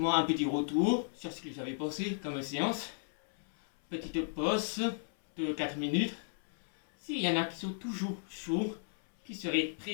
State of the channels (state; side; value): silent; right; 55 dB below the other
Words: un petit retour sur ce que j'avais pensé comme séance. Petite pause de 4 minutes. S'il y en a qui sont toujours chauds, qui seraient